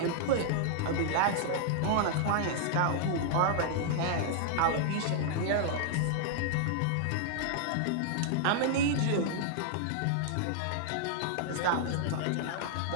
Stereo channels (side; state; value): both; different; correlation -0.01